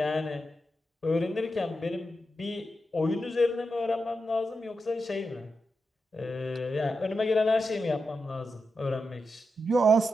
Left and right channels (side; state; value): both; normal; correlation 0.87